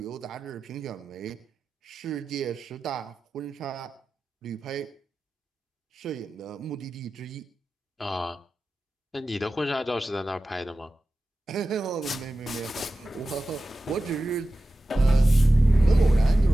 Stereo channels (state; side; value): normal; both; correlation 0.94